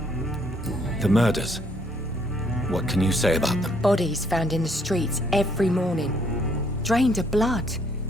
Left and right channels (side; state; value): both; normal; correlation 0.67